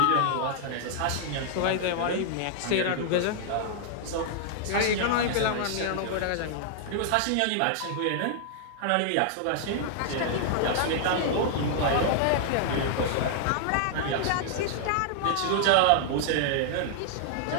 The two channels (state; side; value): different; both; correlation -0.01